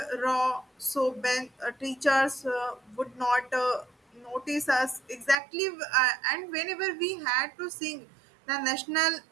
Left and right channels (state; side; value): drops out; left; at 5.4 s